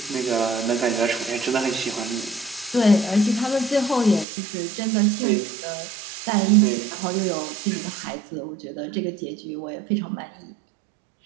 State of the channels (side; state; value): left; drops out; at 4.2 s